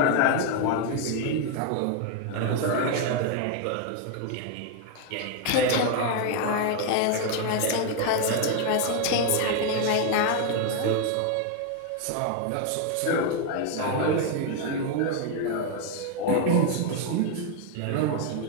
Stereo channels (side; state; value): both; different; correlation 0.00